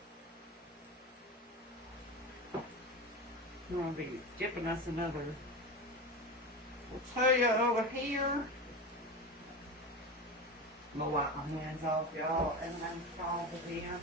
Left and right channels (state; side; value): normal; both; correlation 0.24